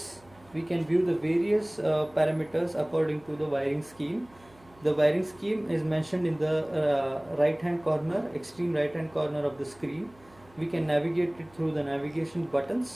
parameters according to the wiring scheme. The wiring scheme is mentioned in the right hand corner, extreme right hand corner of the screen. We can navigate it through the navigation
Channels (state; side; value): noise; right; hum, 27 dB below the sound